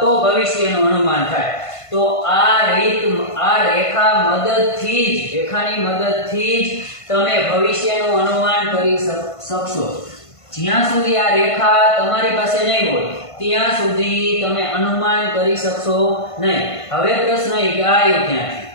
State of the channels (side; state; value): right; late; 1.5 ms